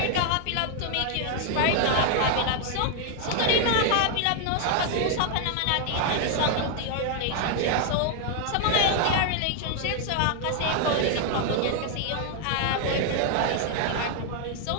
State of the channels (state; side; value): different; both; correlation 0.00